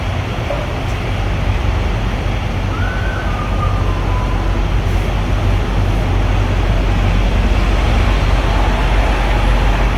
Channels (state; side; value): identical; both; correlation 1.00